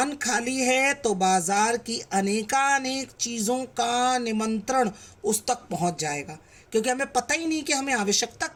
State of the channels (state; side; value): identical; both; correlation 1.00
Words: खाली है तो बाजार की अनेकानेक चीज़ों का निमंत्रण उस तक पहुंच जाएगा। क्योंकि हमें पता ही नहीं कि हमें आवश्यकता